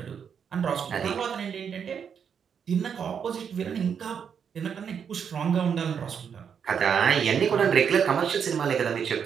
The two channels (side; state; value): left; quieter; 7.3 dB